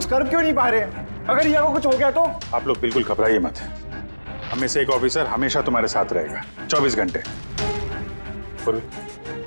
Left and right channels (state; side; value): inverted; both; correlation -1.00